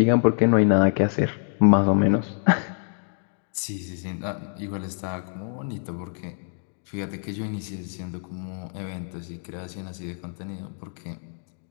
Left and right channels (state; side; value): silent; right; 61 dB below the other